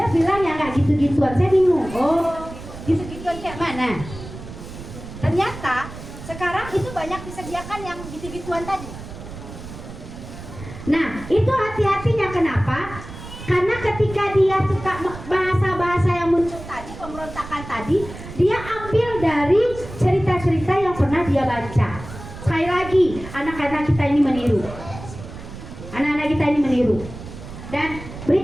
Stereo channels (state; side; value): noise; right; rumble, 13 dB below the sound